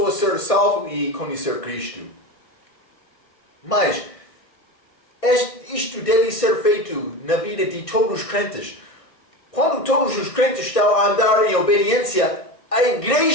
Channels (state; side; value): late; right; 1.6 ms